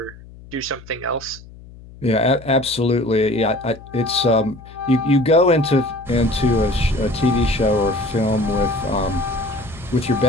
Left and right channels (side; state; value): left; noise; hum, 19 dB below the sound